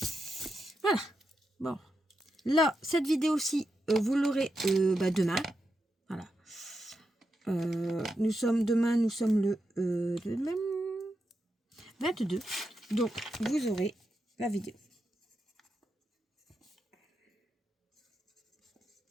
Voilà. Bon. Là, cette vidéo-ci, vous l'aurez bah, demain. Voilà. Nous sommes le 22. Donc, vous aurez la vidéo.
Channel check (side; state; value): both; normal; correlation 0.86